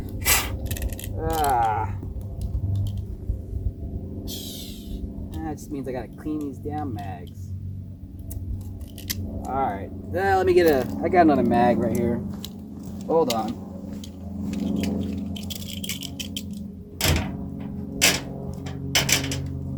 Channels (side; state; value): both; identical; correlation 1.00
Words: That just means I gotta clean these damn mags. Alright, let me get I got another mag right here. Hold on.